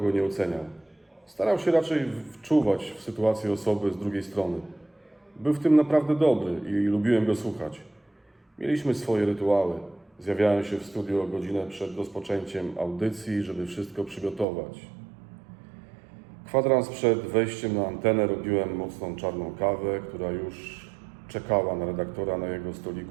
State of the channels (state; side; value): drops out; left; at 14.5 s